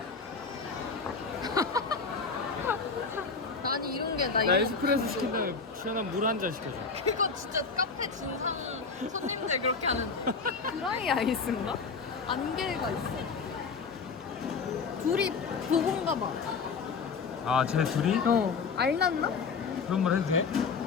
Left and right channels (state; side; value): quieter; right; 5.0 dB